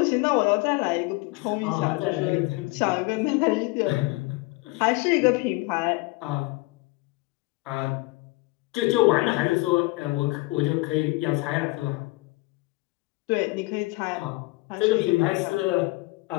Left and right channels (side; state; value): right; quieter; 23.5 dB